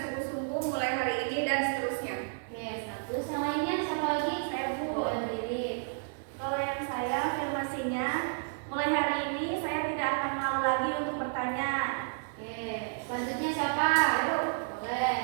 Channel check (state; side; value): silent; left; digital silence